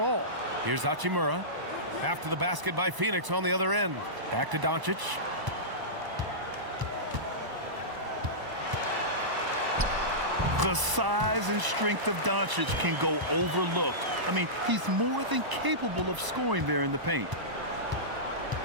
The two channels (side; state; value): left; late; 1.0 ms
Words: Here's Hachimura. After the basket by Phoenix on the other end. Back to Doncic. The size and strength of Doncic can go overlooked. I mean, he's more than capable of scoring there in the paint.